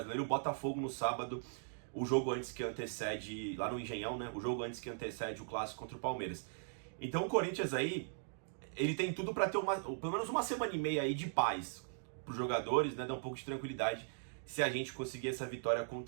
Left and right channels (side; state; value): left; silent; digital silence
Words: O Botafogo no sábado, o jogo antes que antecede, lá no Engenhão, né? O jogo antes que antecede o clássico contra o Palmeiras. Então o Corinthians aí, ele tem tudo para ter pelo menos uma semana e meia aí de paz para os jogadores, né? Dar um pouco de tranquilidade se a gente conseguir essa vitória